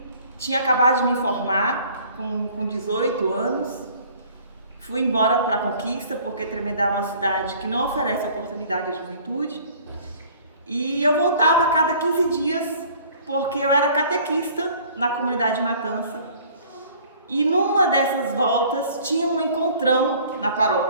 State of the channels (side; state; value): both; inverted; correlation -0.52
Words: tinha acabado de me formar com 18 anos, fui embora para a Conquista, porque Tremedal é uma cidade que não oferece oportunidade à juventude, e eu voltava a cada 15 dias, porque eu era catequista na comunidade Matança. E numa dessas voltas tinha um encontrão na